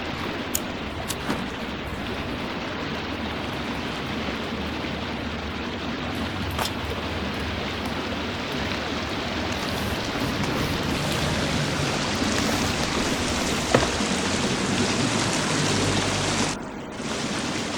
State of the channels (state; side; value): identical; both; correlation 1.00